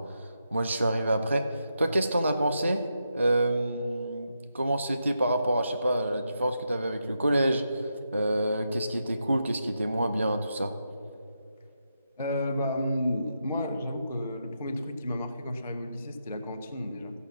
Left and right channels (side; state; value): both; inverted; correlation -0.84